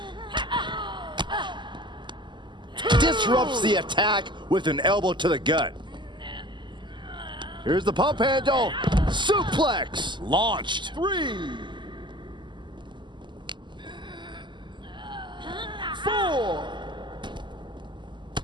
Disrupts the attack with an elbow to the gut. Here's the pump handle. Suplex. Launched. 3, 4,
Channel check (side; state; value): left; late; 0.22 ms